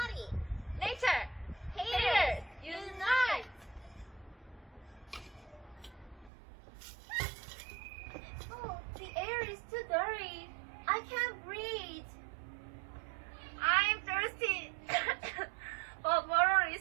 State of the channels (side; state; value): left; drops out; at 6.3 s